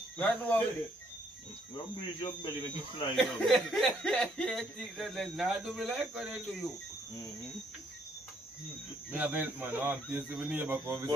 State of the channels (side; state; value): both; normal; correlation 0.69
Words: Right now, You breathe your belly, make you fly down. you think that they not do me like what they do you. Me a vent, man. I'm tasting my neighbor come